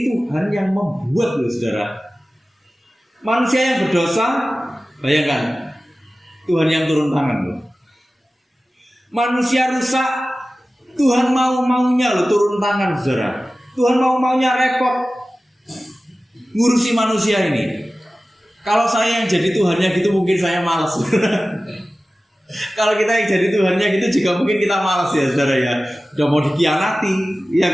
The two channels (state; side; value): normal; both; correlation 0.96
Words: Tuhan yang membuat loh saudara. Manusia yang berdosa, bayangkan, Tuhan yang turun tangan loh. Manusia rusak, Tuhan mau-maunya loh turun tangan saudara. Tuhan mau-maunya repot ngurusi manusia ini. Kalau saya yang jadi Tuhannya gitu mungkin saya malas. Kalau kita yang jadi Tuhannya gitu juga mungkin kita malas ya saudara ya. Udah mau dikhianati, ya